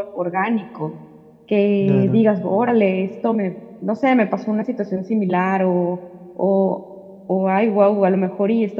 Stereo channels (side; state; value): both; identical; correlation 1.00